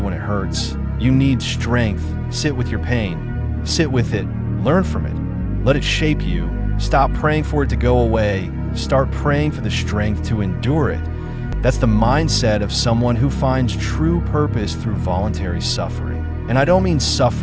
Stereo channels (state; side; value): identical; both; correlation 1.00